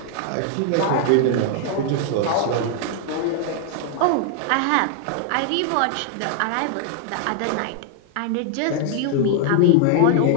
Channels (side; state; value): both; different; correlation 0.00